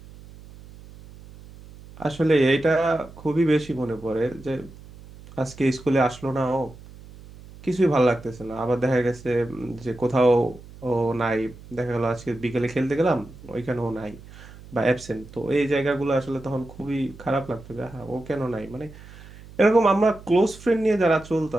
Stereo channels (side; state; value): right; noise; hum, 19 dB below the sound